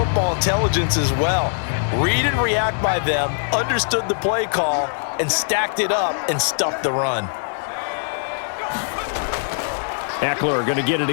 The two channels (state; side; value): silent; right; 65 dB below the other